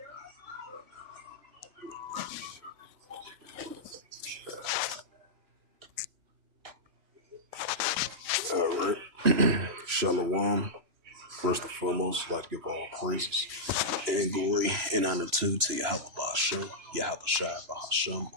right. Shalom. First and foremost, I'd like to give all praises and glory and honor to Yahweh Ba'Shem, Yahweh Shai Ba'Hashem,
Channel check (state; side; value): late; left; 3.0 ms